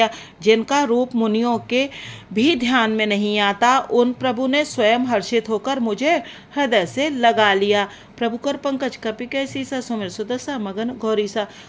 जिनका रूप मुनियों के भी ध्यान में नहीं आता, उन प्रभु ने स्वयं हर्षित होकर मुझे हृदय से लगा लिया। प्रभु कर पंकज कपि कैसी सा, सुमिर सुदशा मगन गौरीसा।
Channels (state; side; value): identical; both; correlation 1.00